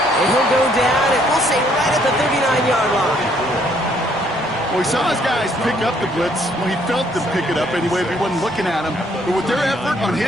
And he'll go down, and we'll say right at the 39-yard line. Well, he saw his guys pick up the blitz. Well, he felt them pick it up anyway, but he wasn't looking at him. But with their effort on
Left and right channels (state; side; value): normal; both; correlation 0.66